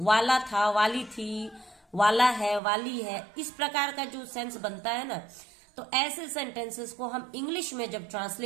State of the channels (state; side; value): drops out; left; at 2.6 s